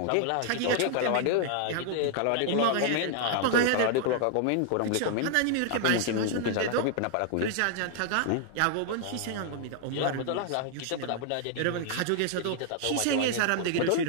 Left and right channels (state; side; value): different; both; correlation 0.00